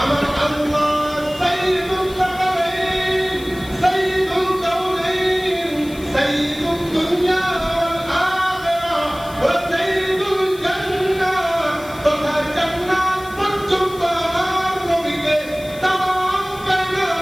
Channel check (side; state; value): left; noise; hiss, 20 dB below the sound